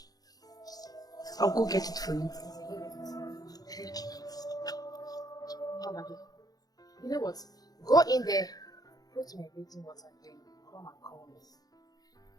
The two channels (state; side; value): late; right; 0.18 ms